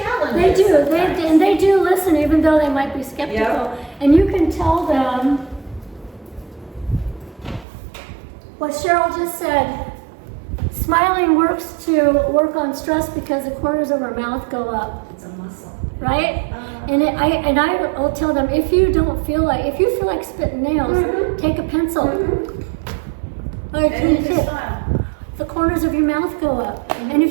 They us do. sometimes. And they do listen, even though they might be skeptical. Yep. And you can tell them what Cheryl just said. Smiling works to work on stress because the corners of our mouth go up. It's a muscle. Right? I'll tell them, if you feel like spitting nails, take a pencil. And you smile. The corners of your mouth go up. And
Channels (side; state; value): left; drops out; at 7.7 s